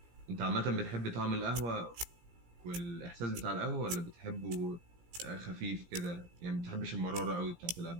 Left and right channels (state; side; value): late; left; 17 ms